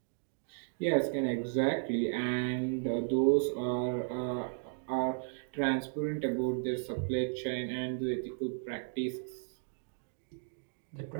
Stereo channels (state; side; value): silent; left; digital silence